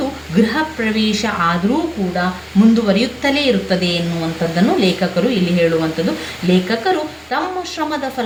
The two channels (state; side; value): identical; both; correlation 1.00